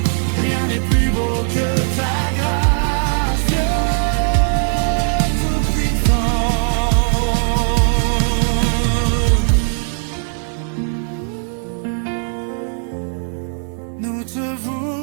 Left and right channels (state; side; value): silent; left; 56 dB below the other